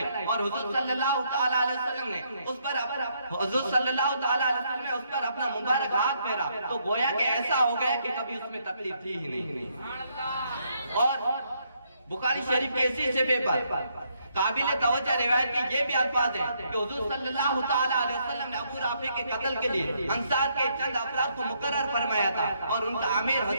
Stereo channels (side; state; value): both; inverted; correlation -0.73